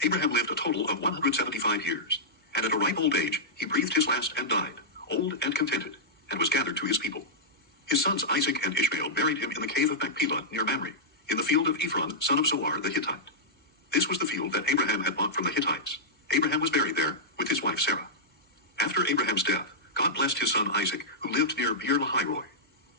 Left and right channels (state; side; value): normal; both; correlation -0.11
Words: Abraham lived a total of 175 years, and at a ripe old age he breathed his last and died, old and contented, and was gathered to his people. His sons Isaac and Ishmael buried him in the cave of Machpelah near Mamre, in the field of Ephron, son of Zohar the Hittite. This was the field that Abraham had bought from the Hittites. Abraham was buried there with his wife Sarah. After Abraham's death, God blessed his son Isaac, who lived near Beer Lahai-roi.